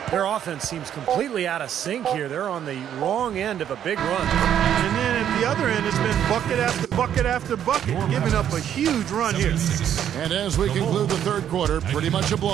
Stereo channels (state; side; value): quieter; left; 9.9 dB